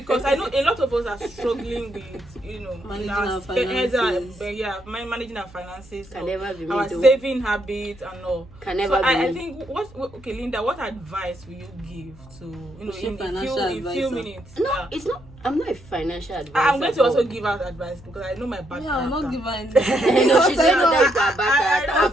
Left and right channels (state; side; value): noise; right; hum, 23 dB below the sound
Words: I know a lot of us are struggling with, managing our finances. Managing our finances, can never be our saving habits and all. Can never be. I think okay, Linda, what advice will you give to in few minutes? No, it's not. I'm not a financial advisor. I'm going to also give out advice because I know my bad character. I'm not giving anything. No, she's not a